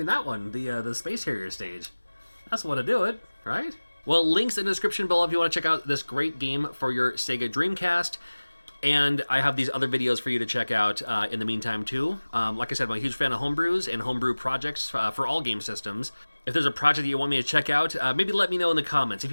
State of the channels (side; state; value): both; inverted; correlation -1.00